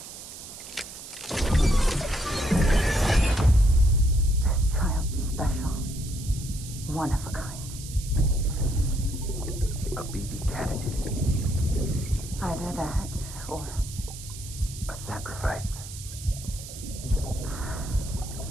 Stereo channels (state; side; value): noise; right; hiss, 13 dB below the sound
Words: Child special. One of a kind. A BB candidate. Either that, or A sacrifice.